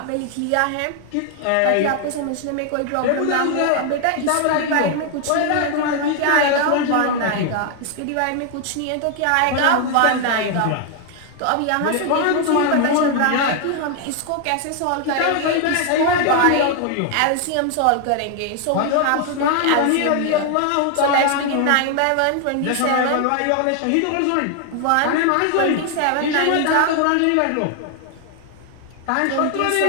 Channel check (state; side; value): different; both; correlation 0.00